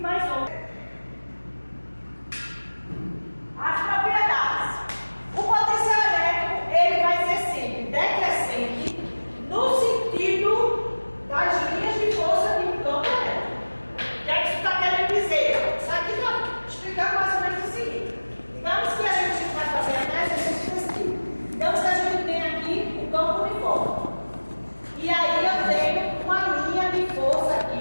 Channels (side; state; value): both; inverted; correlation -1.00